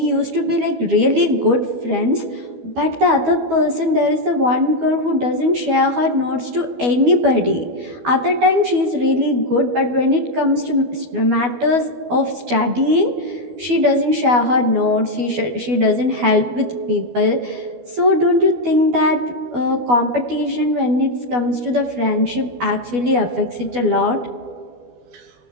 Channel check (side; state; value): left; late; 12 ms